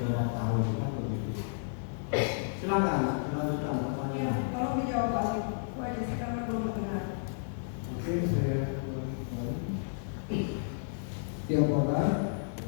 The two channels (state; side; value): silent; right; 56 dB below the other